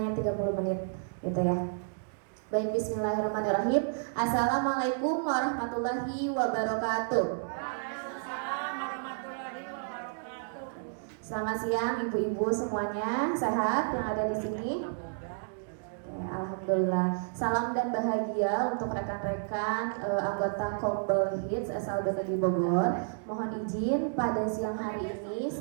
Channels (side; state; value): left; silent; digital silence